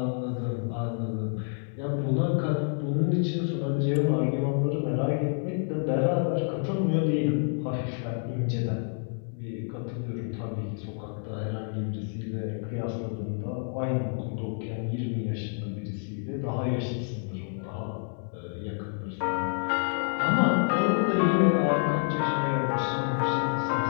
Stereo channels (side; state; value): right; silent; 59 dB below the other